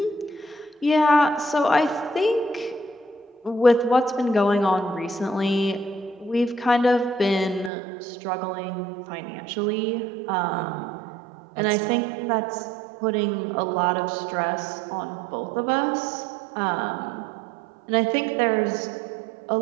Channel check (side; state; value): left; drops out; at 7.7 s